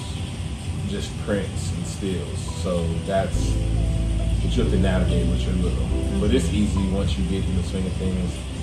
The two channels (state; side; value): identical; both; correlation 1.00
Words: just prints and stills. So that's what you have to navigate with your little. But it's easy once you get in the swing of things,